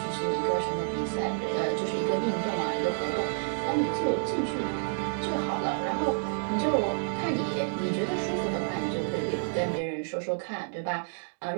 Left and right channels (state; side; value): silent; left; digital silence